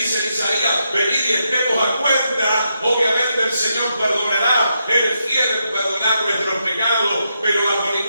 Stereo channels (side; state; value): both; inverted; correlation -0.82